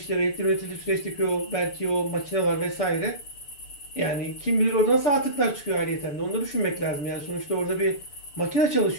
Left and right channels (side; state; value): right; late; 6.8 ms